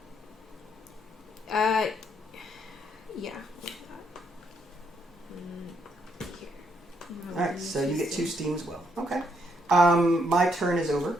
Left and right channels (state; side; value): normal; both; correlation 0.74